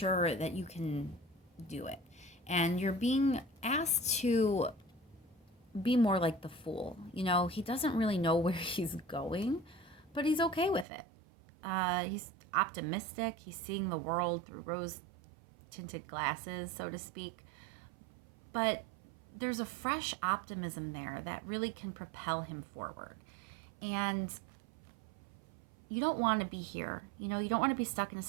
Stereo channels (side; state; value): left; drops out; at 10.9 s